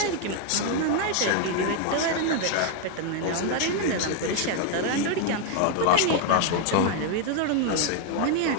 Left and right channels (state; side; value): different; both; correlation 0.00